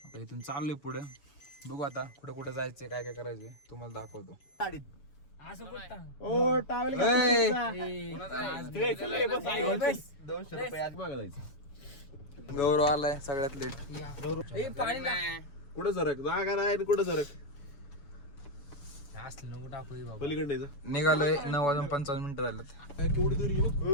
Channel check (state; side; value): late; right; 7.0 ms